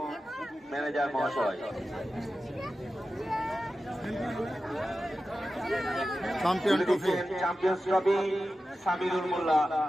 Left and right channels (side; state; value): both; normal; correlation 0.93